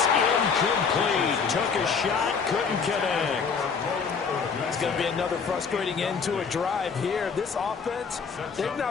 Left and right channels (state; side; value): quieter; right; 5.8 dB